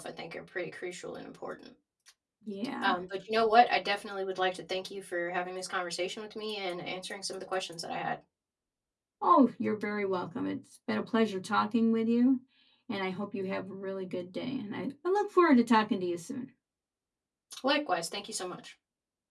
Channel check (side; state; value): both; identical; correlation 1.00